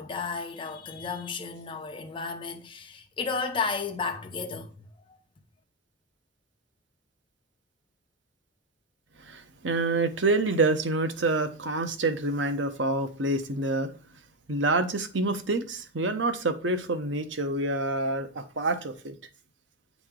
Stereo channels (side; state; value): both; normal; correlation 0.00